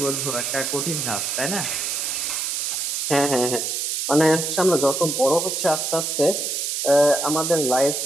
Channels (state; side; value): noise; right; hiss, 1 dB below the sound